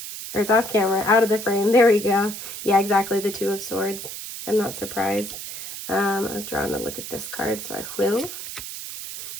Or it's off camera, out of the frame. There we go. Yeah, exactly. The 2 of Swords. I'm not surprised. I was drawn to look at this card, so I will.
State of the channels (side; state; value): right; noise; hiss, 9 dB below the sound